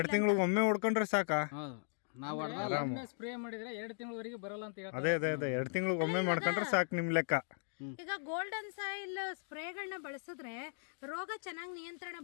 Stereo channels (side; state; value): right; silent; digital silence